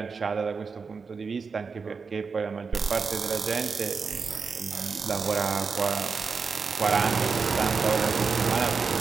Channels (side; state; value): left; quieter; 5.1 dB